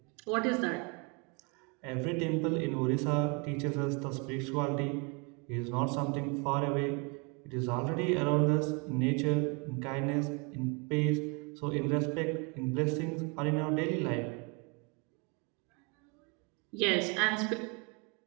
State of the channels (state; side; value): quieter; left; 32.6 dB